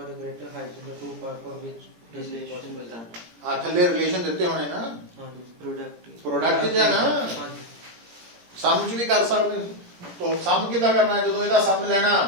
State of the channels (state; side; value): late; left; 17 ms